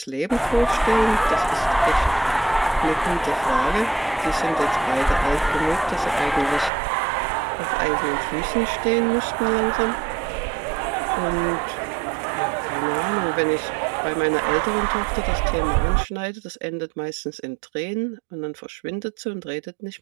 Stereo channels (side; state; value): left; drops out; at 6.7 s